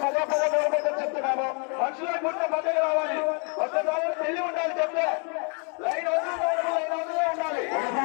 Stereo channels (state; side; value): quieter; right; 37.8 dB